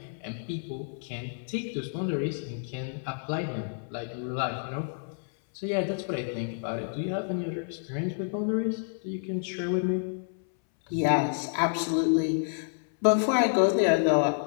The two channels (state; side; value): silent; right; 59 dB below the other